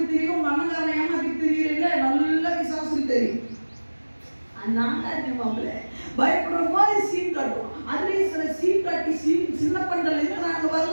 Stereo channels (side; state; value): both; inverted; correlation -1.00